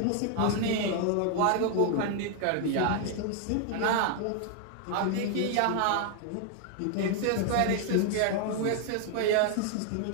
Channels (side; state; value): both; different; correlation 0.00